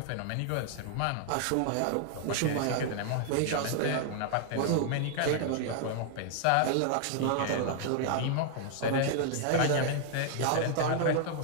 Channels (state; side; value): different; both; correlation 0.00